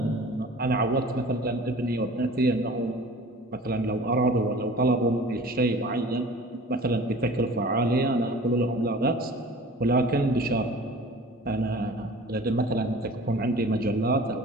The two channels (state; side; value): normal; both; correlation 0.43